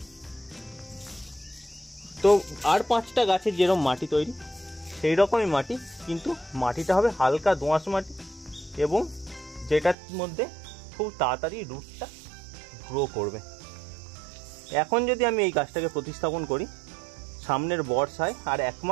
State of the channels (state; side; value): drops out; left; at 10.0 s